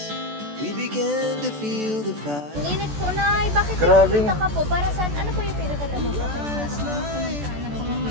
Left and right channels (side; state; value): left; late; 14 ms